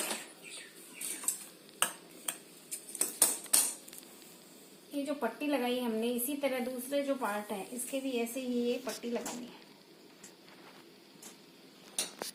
ये जो पट्टी लगाई हमने, इसी तरह दूसरे जो पार्ट है इसके भी ऐसे ही ये पट्टी लगानी है।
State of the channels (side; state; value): both; identical; correlation 1.00